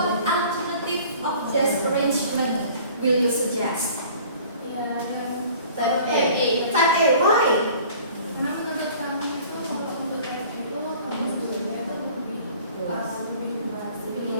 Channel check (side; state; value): both; inverted; correlation -0.49